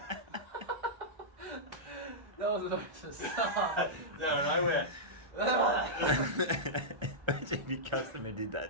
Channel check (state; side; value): late; left; 1.3 ms